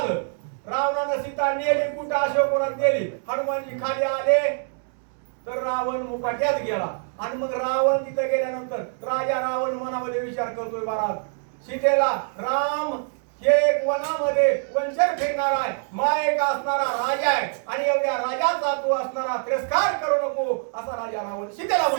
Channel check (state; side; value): silent; left; 62 dB below the other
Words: रावणानं सीता नेली कुठं अशोकवनात गेली. हनुमानजी खाली आले तर रावण मुकाट्यात गेला. आणि मग रावण तिथे गेल्यानंतर राजा रावण मनामध्ये विचार करतोय महाराज, सीतेला राम हे एक वनामध्ये वंशर फिरणारा आहे, मायक असणारा राजा आहे आणि एवढ्या राजाचा तू असणारा तिरस्कार करू नको असा राजा रावण सीतेला म्हणतो.